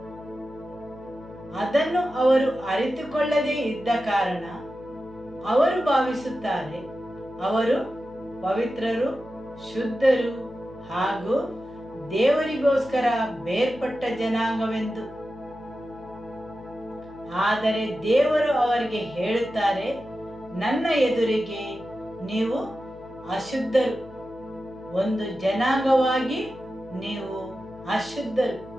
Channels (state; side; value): noise; left; hum, 21 dB below the sound